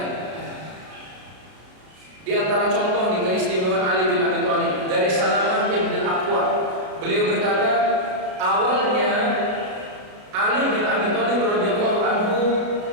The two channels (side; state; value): left; late; 33 ms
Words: Di antara contoh nih keistimewaan Ali bin Abi Thalib dari Salamah bin Aqwa. Beliau berkata, awalnya Ali bin Abi Thalib radhiyallahu anhu